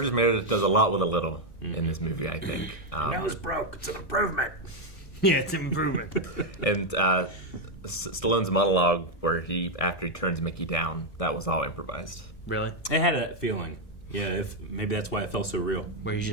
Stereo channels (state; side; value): late; right; 1.6 ms